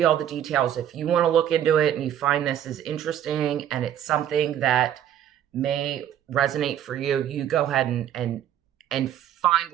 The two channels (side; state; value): left; quieter; 10.5 dB